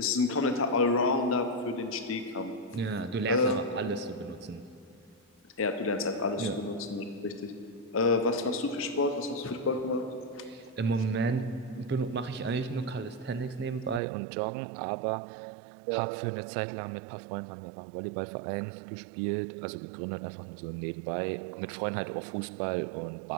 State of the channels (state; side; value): drops out; left; at 14.0 s